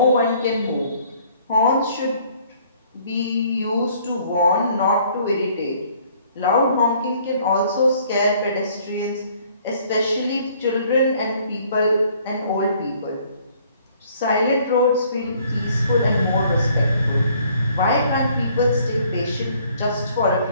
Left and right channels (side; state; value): both; inverted; correlation -0.60